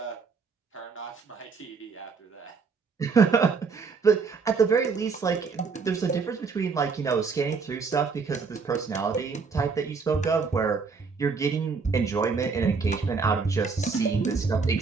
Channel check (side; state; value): left; quieter; 5.0 dB